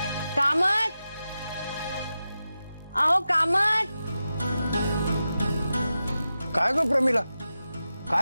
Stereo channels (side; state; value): both; inverted; correlation -0.92